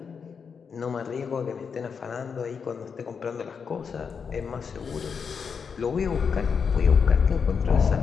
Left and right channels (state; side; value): quieter; right; 6.1 dB